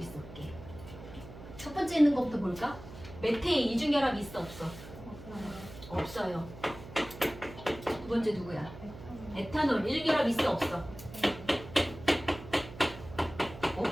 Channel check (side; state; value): right; noise; hum, 15 dB below the sound